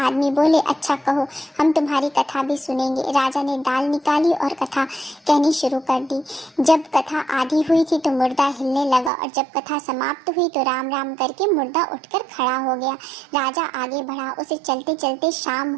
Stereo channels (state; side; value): drops out; left; at 9.1 s